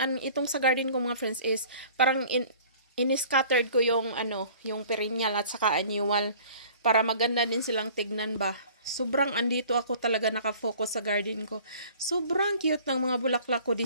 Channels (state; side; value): inverted; both; correlation -0.49